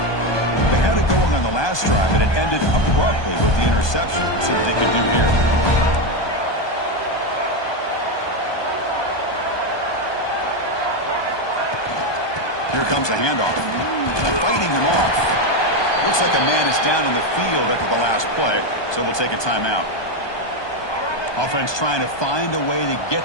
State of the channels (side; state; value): right; late; 1.2 ms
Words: They had it going on the last drive, but it ended abruptly with the interception. Let's see what they can do here. Here comes the handoff. Fighting him off. Looks like a man is down on the field after the last play, so we'll take a timeout. Offense trying to find a way to